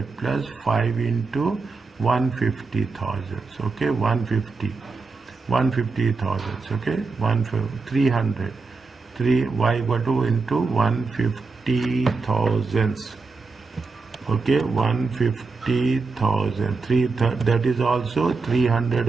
plus 5 into 150,000. Okay, 150,000. Okay, 300. 3 y equal to into 150,000. Okay, 150,000. That is also 300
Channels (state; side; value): quieter; left; 4.2 dB